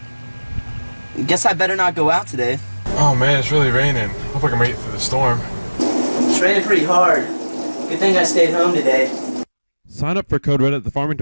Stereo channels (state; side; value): inverted; both; correlation -1.00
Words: Guess I better not go out today. Oh man, it's really raining. Hope I can make it through the storm. It's raining pretty hard. Good thing I stayed home today. Sign up for Code Red at the